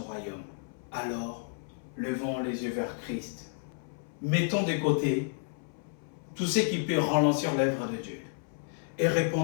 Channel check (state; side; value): silent; right; 57 dB below the other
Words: royaume. Alors, levons les yeux vers Christ. Mettons de côté tout ce qui peut ralentir l'œuvre de Dieu et